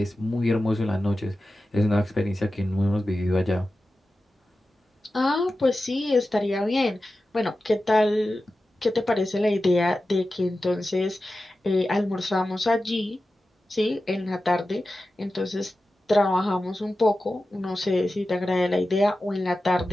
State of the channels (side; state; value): both; normal; correlation 0.93